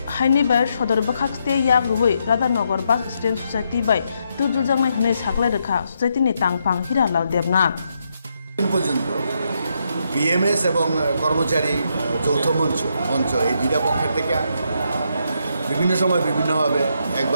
हाइनि बाय सदर बखाक्सते याग रुबै राधानगर बास स्टैंड सोसाइटी बाय तुलुजांनाय हने साखलाय रेखा सोसाइटीनि तांफां हिरालाल देबनाथ পর্যন্ত বিএমএস এবং কর্মচারী যৌথ মঞ্চ এই দুইটা পক্ষের থেকে বিভিন্ন সময় বিভিন্নভাবে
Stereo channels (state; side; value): inverted; both; correlation -0.79